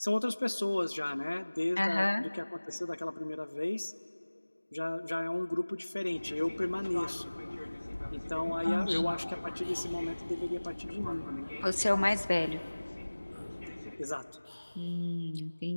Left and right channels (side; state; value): both; inverted; correlation -1.00